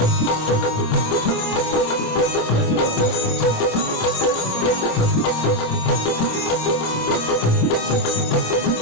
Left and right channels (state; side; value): late; right; 27 ms